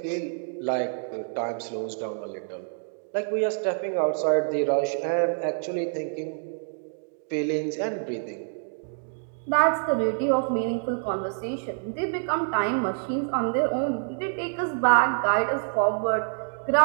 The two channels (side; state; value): left; silent; digital silence